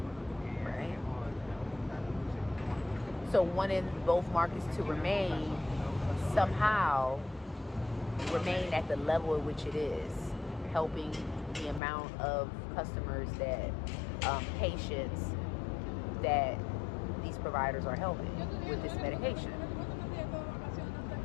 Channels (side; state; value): right; drops out; at 11.8 s